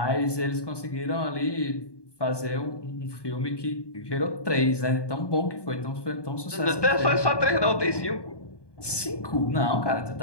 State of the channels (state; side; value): late; right; 1.2 ms